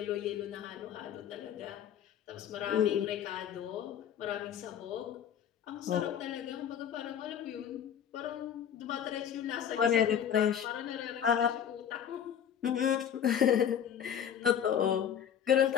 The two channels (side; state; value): right; quieter; 8.9 dB